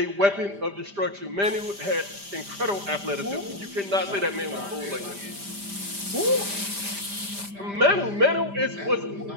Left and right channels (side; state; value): left; late; 5.0 ms